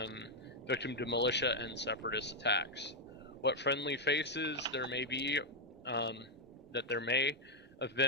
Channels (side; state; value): both; normal; correlation 0.00